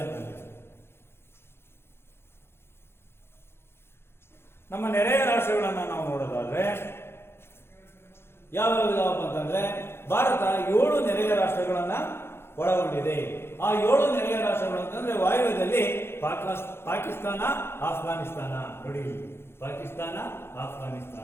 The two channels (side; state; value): right; late; 0.12 ms